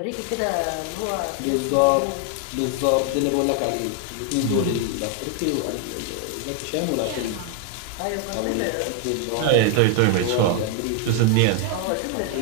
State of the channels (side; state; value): both; different; correlation 0.01